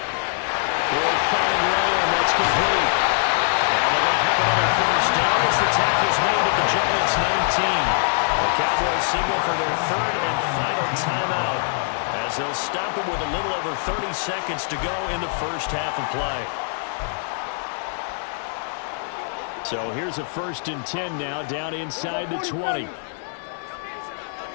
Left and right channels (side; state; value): right; silent; digital silence